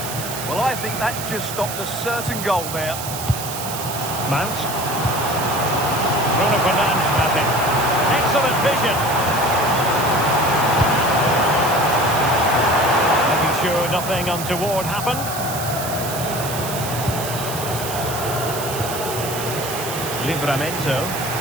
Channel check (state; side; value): noise; right; hiss, 7 dB below the sound